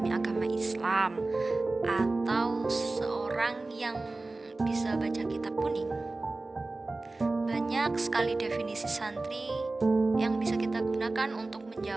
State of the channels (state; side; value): quieter; left; 3.2 dB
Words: agama Islam, atau seorang yang bisa baca kitab kuning. Banyak sekali definisi santri yang bisa kita gunakan untuk